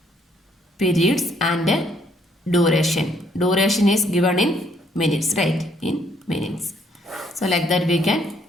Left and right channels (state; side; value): normal; both; correlation 0.67